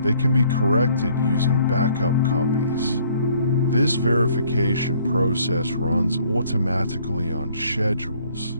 they can be corrected using backup copies. This verification process runs automatically on schedules,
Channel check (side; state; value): both; inverted; correlation -0.61